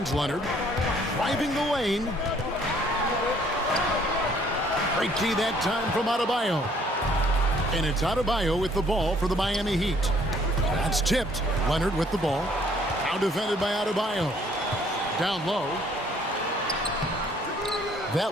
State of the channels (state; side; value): normal; both; correlation 0.61